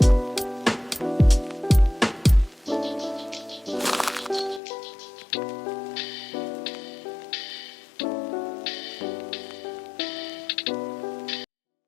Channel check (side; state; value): right; drops out; at 4.6 s